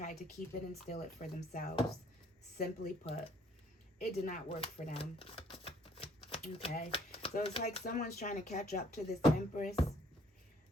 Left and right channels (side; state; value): both; normal; correlation 0.62